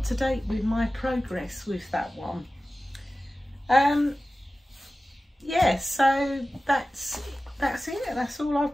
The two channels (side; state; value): both; normal; correlation 0.95